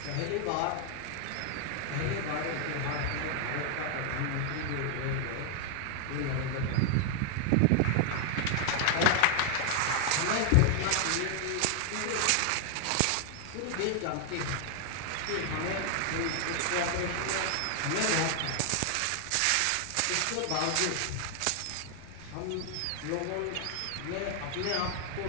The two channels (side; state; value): both; different; correlation 0.00